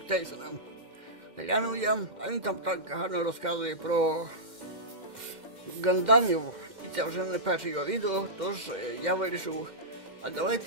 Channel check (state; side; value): late; left; 2.1 ms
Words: Тейсона. Глянув я, а він там так гарно розказує про гандамів, і це вже не перше його відео, тож я вирішив, а